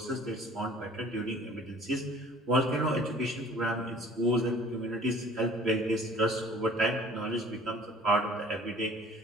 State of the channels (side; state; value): both; normal; correlation 0.50